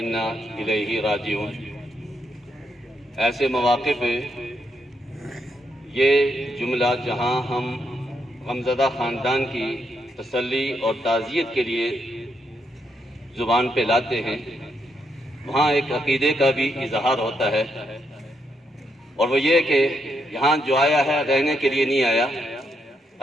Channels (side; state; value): both; normal; correlation 0.79